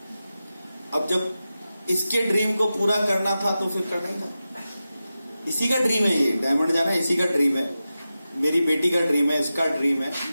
अब जब इसके ड्रीम को पूरा करना था तो फिर करना ही था। इसी का ड्रीम है, ये डायमंड जाना इसी का ड्रीम है, मेरी बेटी का ड्रीम है, इसका ड्रीम है।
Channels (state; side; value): inverted; both; correlation -0.93